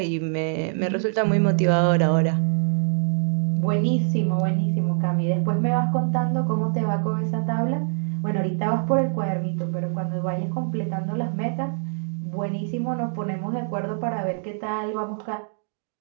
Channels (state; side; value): silent; left; digital silence